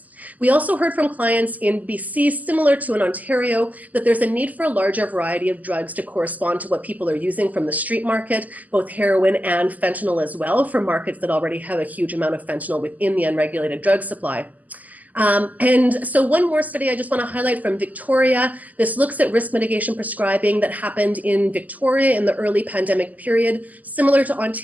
We also heard from clients in BC, similar to in Ontario, that there's a need for a larger variety of drugs to correspond to what people are using from the street market, both heroin and fentanyl as well, for markets that already have a huge amount of fentanyl within the unregulated drug supply. And so one more study I just want to highlight from Victoria. This looks at risk mitigation prescribing that happened in Victoria in the early pandemic period. Similar to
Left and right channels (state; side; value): late; left; 0.079 ms